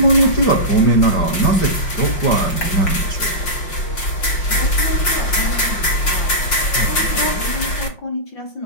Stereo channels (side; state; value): right; late; 5.5 ms